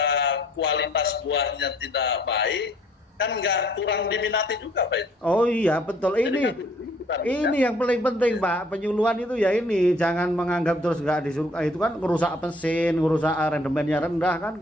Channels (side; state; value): both; normal; correlation 0.60